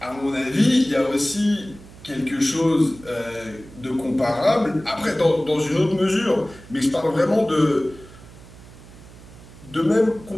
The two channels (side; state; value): right; noise; hum, 20 dB below the sound